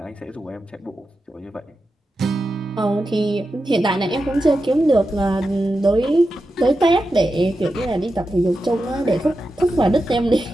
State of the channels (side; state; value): both; normal; correlation 0.90